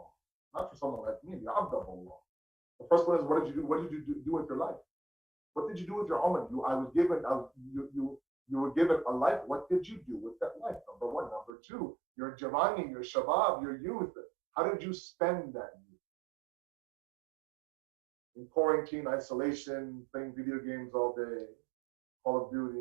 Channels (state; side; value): drops out; left; at 11.5 s